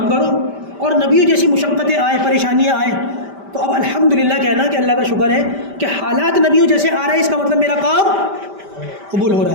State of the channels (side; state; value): left; late; 5.1 ms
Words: کرو اور نبیوں جیسی مشقتیں آئے، پریشانیاں آئیں، تو اب الحمدللہ کہنا کہ اللہ کا شکر ہے کہ حالات نبیوں جیسے آ رہے ہیں، اس کا مطلب میرا کام قبول ہو رہا